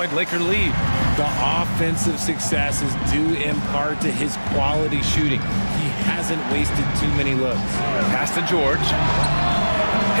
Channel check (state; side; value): inverted; both; correlation -1.00